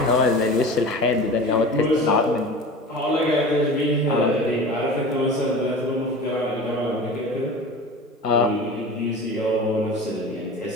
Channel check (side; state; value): both; normal; correlation 0.35